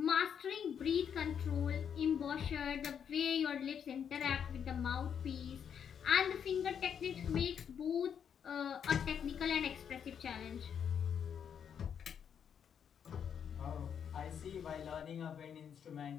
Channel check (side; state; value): right; quieter; 7.9 dB